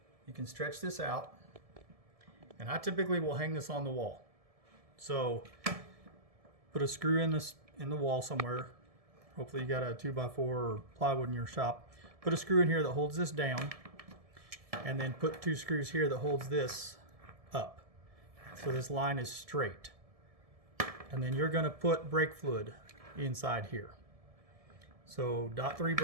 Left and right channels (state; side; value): late; left; 1.7 ms